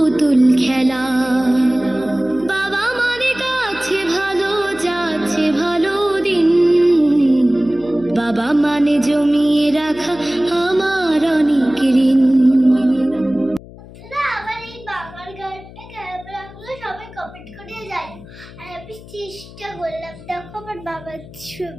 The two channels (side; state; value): left; noise; hum, 18 dB below the sound